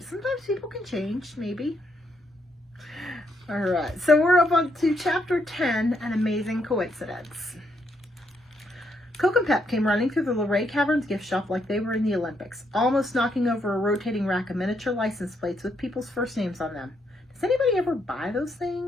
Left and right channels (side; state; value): both; normal; correlation 0.76